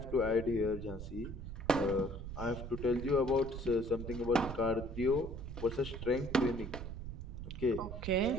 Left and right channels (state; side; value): noise; right; rumble, 8 dB below the sound